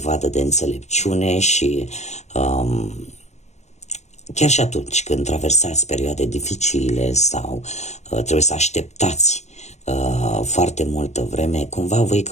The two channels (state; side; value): late; right; 0.33 ms